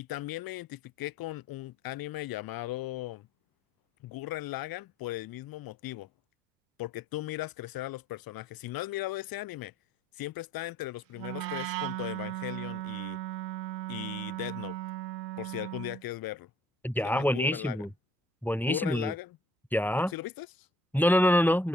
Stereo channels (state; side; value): normal; both; correlation 0.59